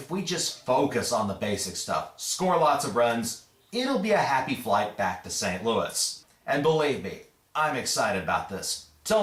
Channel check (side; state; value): both; identical; correlation 1.00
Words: we just focus on the basic stuff, score lots of runs, it'll be a happy flight back to St. Louis. And believe me, I'm excited about this.